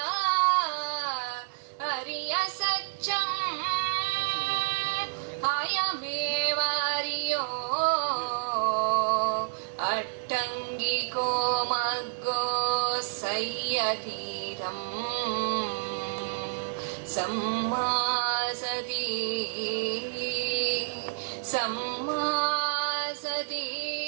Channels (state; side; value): silent; left; digital silence